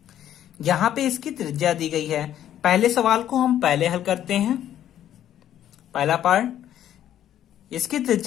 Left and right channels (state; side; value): quieter; right; 11.2 dB